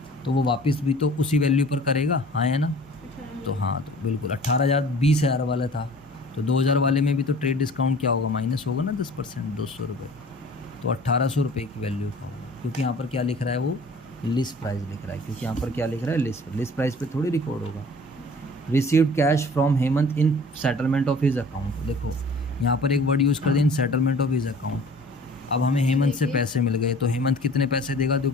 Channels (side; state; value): both; normal; correlation 0.47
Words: तो वो वापस भी तो उसी वैल्यू पर करेगा, हाँ है ना? तो हाँ, तो बिल्कुल 18,000 20,000 वाला था, तो 2,000 वाले में भी तो ट्रेड डिस्काउंट क्या होगा, माइनस होगा ना 10%, 200 रुपये। तो 1,800 रुपये की वैल्यू का होगा, क्योंकि यहाँ पर क्या लिख रहा है, वो लिस्ट प्राइस लिख रहा है, क्योंकि यहाँ पर क्या लिख रहा है, लिस्ट प्राइस पे थोड़ी रिकॉर्ड होगा। Received cash from Hemant in settlement of his account. देखो यहाँ पर एक वर्ड यूज़ कर दें, इन सेटलमेंट ऑफ हिज अकाउंट। अब हमें हेमंत से पैसे मिल गए, तो हेमंत कितने पैसे देगा,